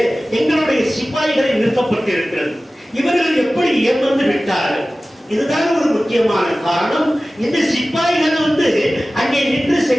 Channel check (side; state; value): both; normal; correlation 0.96